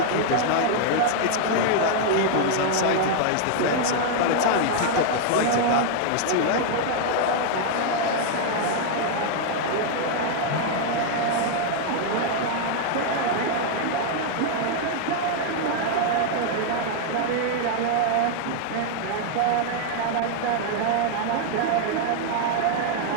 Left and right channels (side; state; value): both; different; correlation 0.00